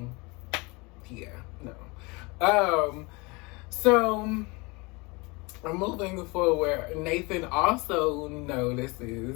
yeah, no. So moving forward, Nathan also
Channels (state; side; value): quieter; right; 26.7 dB